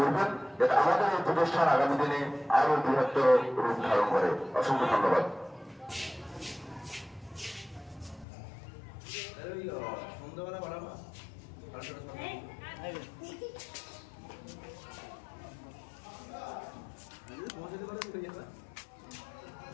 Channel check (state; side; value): drops out; right; at 8.2 s